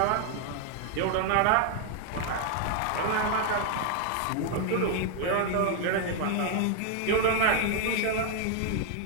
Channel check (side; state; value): both; different; correlation 0.00